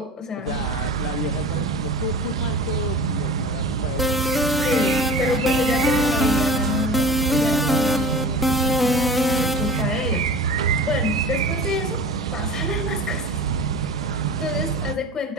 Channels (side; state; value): both; normal; correlation 0.37